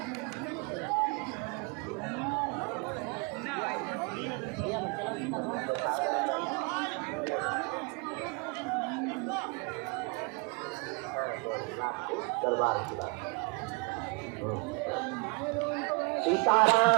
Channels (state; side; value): quieter; left; 30.8 dB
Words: दरबार की बात